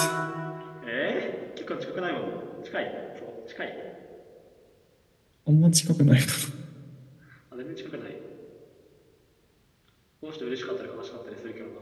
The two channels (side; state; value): both; identical; correlation 1.00